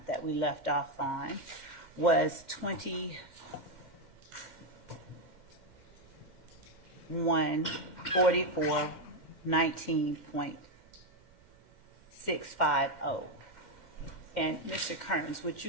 that we left off on was 21:44:19.650. And Mr. Kearns, would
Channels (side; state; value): right; late; 2.1 ms